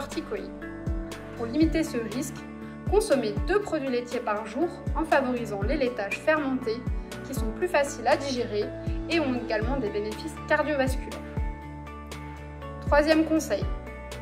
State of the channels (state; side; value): identical; both; correlation 1.00